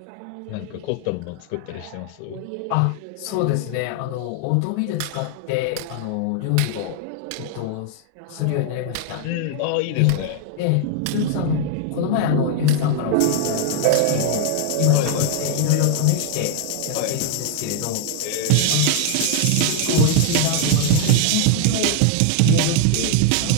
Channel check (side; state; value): both; different; correlation 0.00